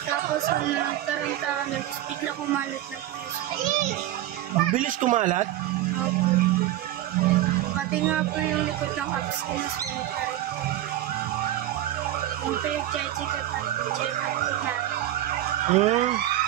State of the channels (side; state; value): left; quieter; 13.8 dB